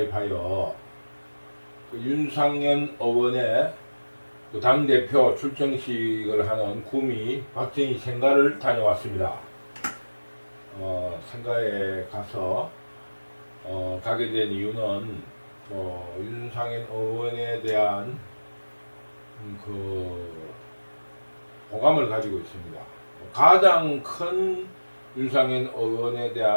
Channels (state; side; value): inverted; both; correlation -1.00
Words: 그 윤상현 의원의 그 당대표 출정식을 하는 구미 박정희 생가를 다녀왔습니다. 생가에 가서 가게 된 이유는 윤상현 의원에 대한 그 호감을 가지고 있습니다. 가장 큰 윤상현 의원에